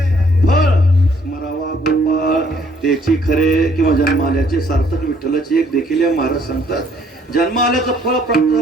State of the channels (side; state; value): both; normal; correlation 0.64